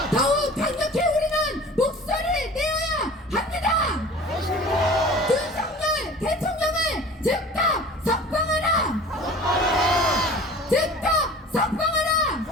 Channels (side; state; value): both; normal; correlation 0.42